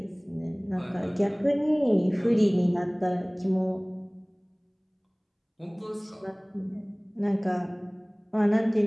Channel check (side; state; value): both; identical; correlation 1.00